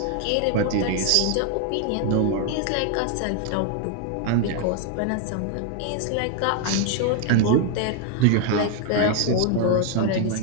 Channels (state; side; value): different; both; correlation 0.00